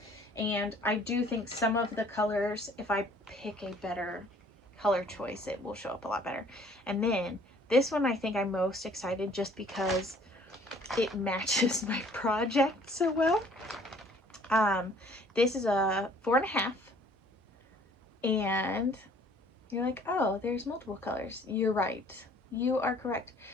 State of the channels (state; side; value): normal; both; correlation 0.56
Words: and I do think some of the colors, if I pick a better color choice, it will show up a lot better. And then this one I think I'm most excited just because it matches my project so well. This is a 4.5, and you're like, oh, there's multiple colors. You're right. You are correct.